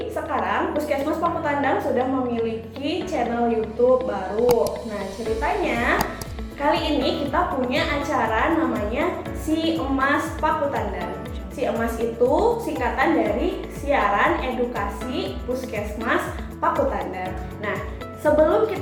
sekarang Puskesmas Pakutandang sudah memiliki channel YouTube baru. Nah, ceritanya kali ini kita punya acara namanya Si Emas Pakutandang. Si Emas itu singkatan dari Siaran Edukasi Puskesmas Pakutandang. Nah, sebelum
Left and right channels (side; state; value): both; identical; correlation 1.00